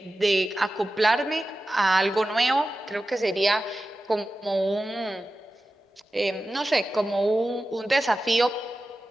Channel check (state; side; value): normal; both; correlation 0.94